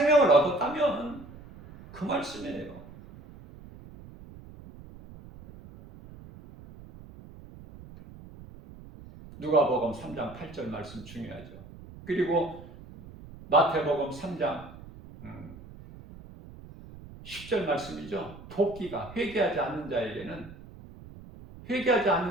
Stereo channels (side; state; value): right; noise; rumble, 17 dB below the sound